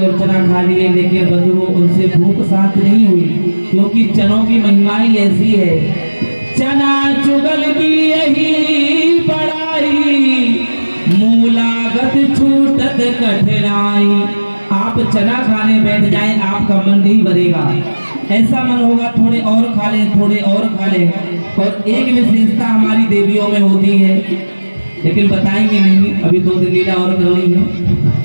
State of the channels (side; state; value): both; inverted; correlation -1.00